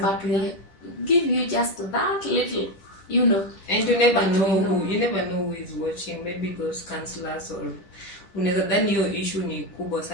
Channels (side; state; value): right; late; 10 ms